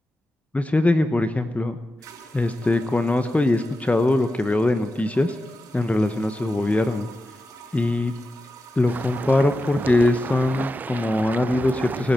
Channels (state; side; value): normal; both; correlation 0.91